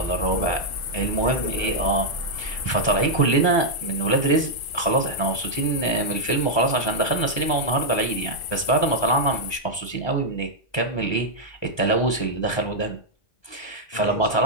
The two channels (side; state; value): right; late; 1.2 ms